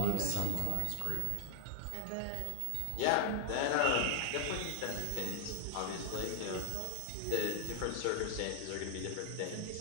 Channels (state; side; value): different; both; correlation 0.00